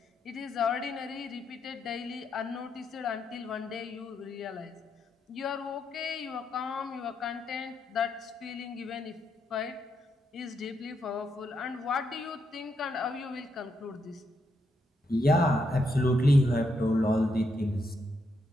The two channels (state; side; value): normal; both; correlation 0.80